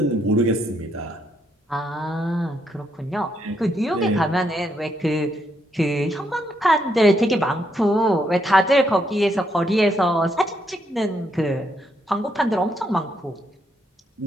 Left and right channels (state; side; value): normal; both; correlation 0.76